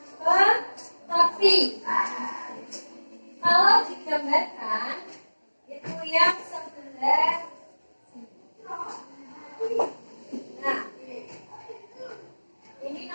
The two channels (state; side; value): inverted; both; correlation -1.00